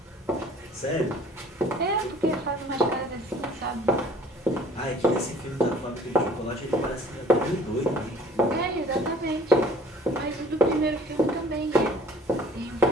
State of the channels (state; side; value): normal; both; correlation 0.52